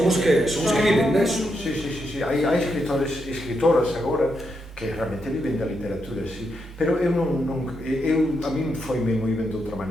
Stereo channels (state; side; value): normal; both; correlation 0.82